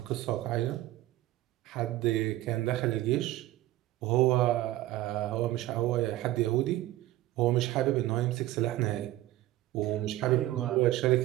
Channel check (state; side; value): quieter; left; 15.7 dB